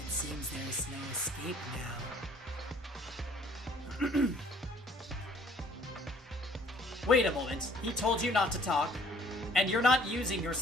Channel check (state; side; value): normal; both; correlation 0.58